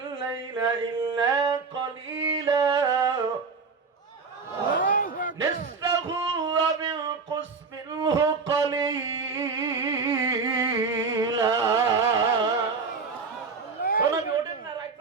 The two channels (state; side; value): quieter; left; 4.8 dB